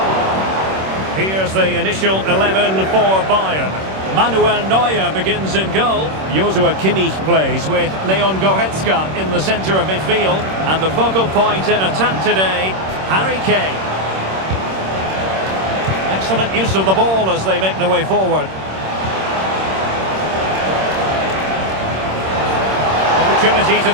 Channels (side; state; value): left; late; 26 ms